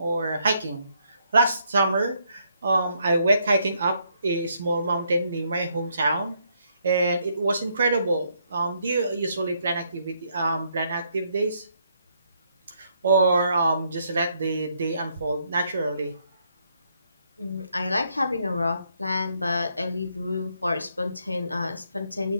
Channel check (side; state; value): both; inverted; correlation -0.73